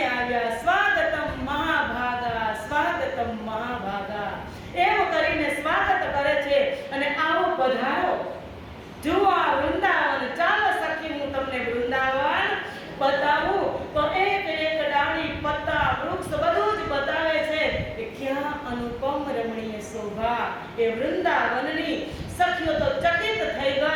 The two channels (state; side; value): identical; both; correlation 1.00